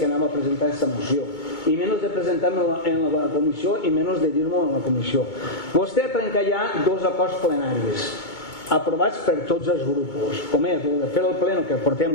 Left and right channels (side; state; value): right; late; 2.2 ms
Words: anava a presentar aquesta moció. I menys de presentar-me en la comissió i menys de dir-m'ho en la comissió. Vostè ha trencat ja 2 acords plenaris aprovats per tots els grups, com és el de fer el pleno, que portem